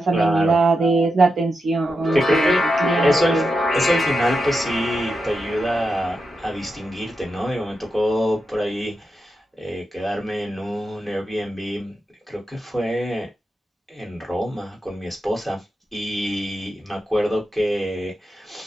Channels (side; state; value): both; normal; correlation 0.87